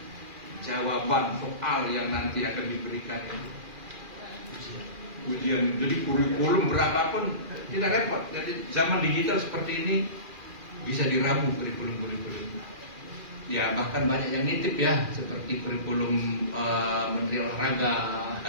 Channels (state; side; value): late; left; 2.4 ms